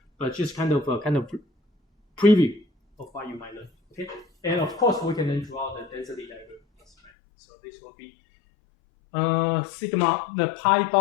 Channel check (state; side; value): drops out; right; at 7.1 s